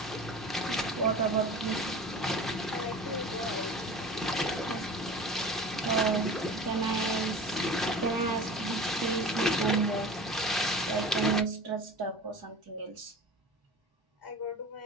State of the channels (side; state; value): both; normal; correlation 0.36